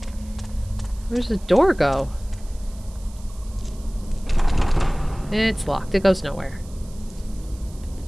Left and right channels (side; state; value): right; noise; hiss, 23 dB below the sound